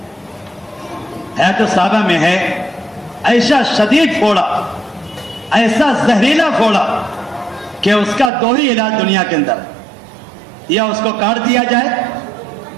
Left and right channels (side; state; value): left; drops out; at 8.3 s